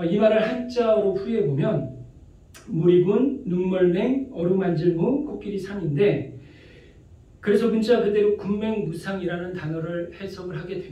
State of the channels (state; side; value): identical; both; correlation 1.00